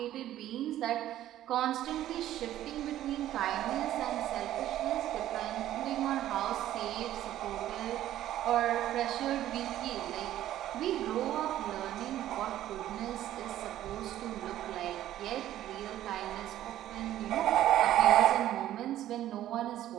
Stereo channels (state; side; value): quieter; left; 12.9 dB